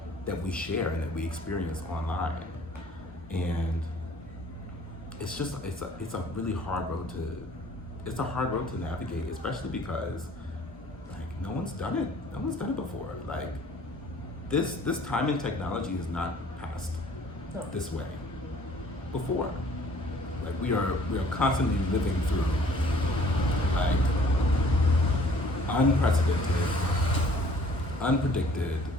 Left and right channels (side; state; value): both; normal; correlation 0.55